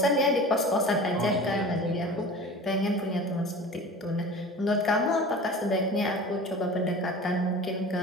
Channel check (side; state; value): both; normal; correlation 0.38